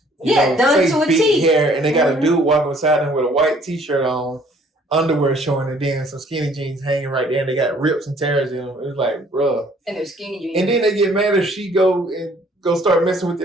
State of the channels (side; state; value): both; normal; correlation 0.59